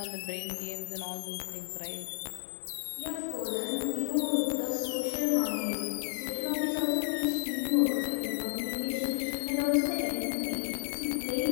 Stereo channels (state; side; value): silent; right; digital silence